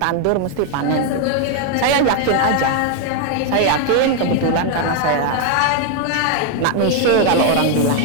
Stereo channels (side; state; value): both; different; correlation 0.01